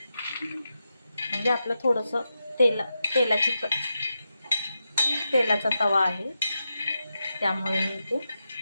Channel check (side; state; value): both; inverted; correlation -0.88